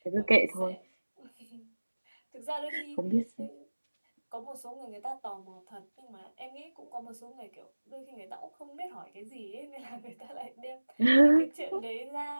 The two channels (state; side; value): inverted; both; correlation -1.00